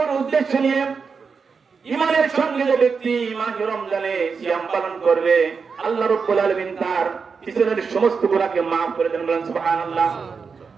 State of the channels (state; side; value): quieter; left; 5.4 dB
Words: উদ্দেশ্য নিয়ে ঈমানের সঙ্গে যে ব্যক্তি মাহে রমজানে সিয়াম পালন করবে, আল্লাহ রাব্বুল আলামিন তার পিছনের সমস্ত গুনাহকে maaf করে দেন। বলেন সুবহানাল্লাহ।